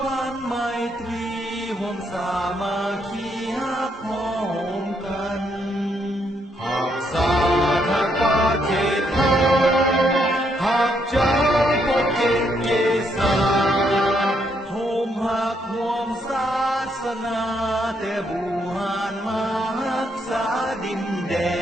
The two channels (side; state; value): both; normal; correlation 0.75